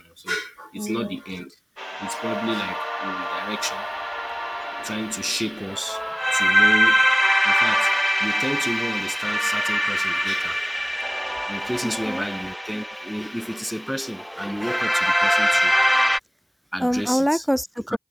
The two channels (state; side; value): identical; both; correlation 1.00